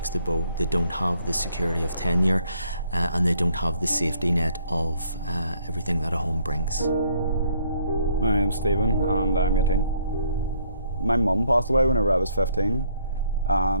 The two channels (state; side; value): inverted; both; correlation -0.66